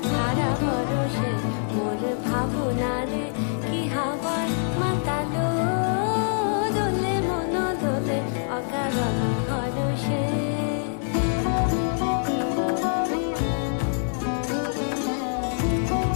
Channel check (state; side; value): silent; right; 57 dB below the other